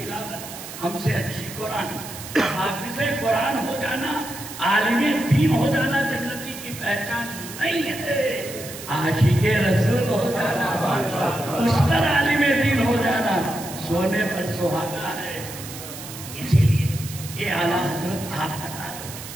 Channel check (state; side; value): noise; right; hiss, 12 dB below the sound